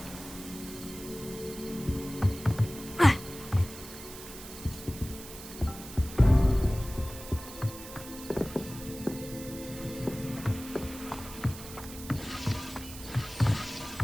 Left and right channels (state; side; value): noise; right; hiss, 13 dB below the sound